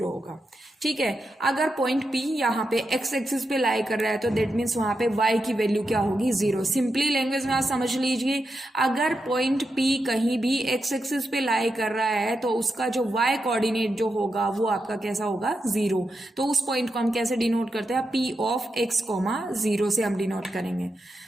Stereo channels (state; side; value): normal; both; correlation 0.87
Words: होगा, ठीक है। अगर पॉइंट P यहाँ पे x एक्सिस पे लाई कर रहा है तो दैट मीन्स वहां पे y की वैल्यू क्या होगी, 0। सिंपली लैंग्वेज में आप समझ लीजिए, अगर पॉइंट P कहीं भी x एक्सिस पे लाई कर रहा है तो उसका जो y कोऑर्डिनेट जो होगा वो आपका कैसा होगा, 0। तो उस पॉइंट को हम कैसे डिनोट करते हैं, P ऑफ x, 0 से हम डिनोट करेंगे,